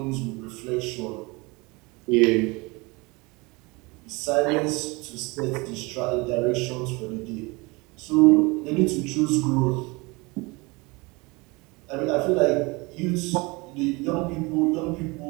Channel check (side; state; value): left; quieter; 25.8 dB